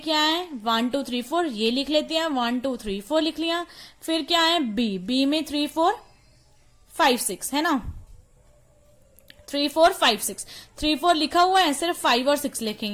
है 1 2 3 4, ये लिख लेते हैं, 1 2 3 4 लिख लिया। फिर क्या है बी, बी में 3 4 5 6 है ना, 3 4 5 6, 3 4 लिखा हुआ है, सिर्फ 5 और 6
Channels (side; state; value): both; identical; correlation 1.00